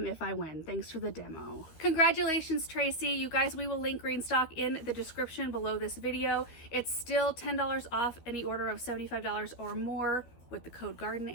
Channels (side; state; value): right; late; 13 ms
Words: if I win. Thanks for the demo. Congratulations, Tracy. You guys, we will link Greenstock in the description below this video. It's still $10 off any order of $75 or more with the code Garden